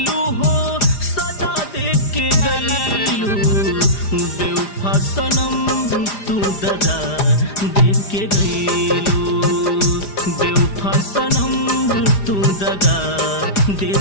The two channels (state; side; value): late; right; 4.9 ms